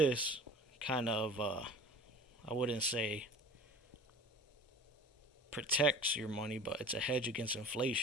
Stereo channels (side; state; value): both; normal; correlation 0.40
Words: kind of, I wouldn't say protects your money, but it's a hedge against